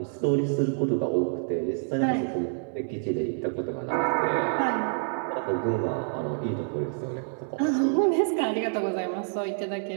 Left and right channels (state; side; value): silent; left; 60 dB below the other